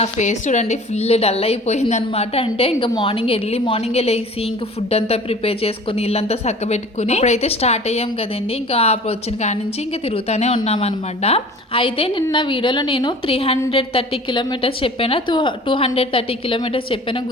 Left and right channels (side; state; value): both; normal; correlation 0.44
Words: ఫేస్ చూడండి ఫుల్ డల్ అయిపోయింది అనమాట. అంటే ఇంకా ఎర్లీ మార్నింగే లేచి ఇంకా ఫుడ్ అంతా ప్రిపేర్ చేసుకుని ఇల్లంతా చక్క పెట్టుకుని ఇప్పుడైతే స్టార్ట్ అయ్యాం కదండి. ఇంకా వచ్చిన కాడి నుంచి ఇంకా తిరుగుతూనే ఉన్నాం అనమాట. అయితే నిన్న వీడియోలో నేను 330 కిలోమీటర్స్ చెప్పాను, 230 కిలోమీటర్స్ చెప్పాను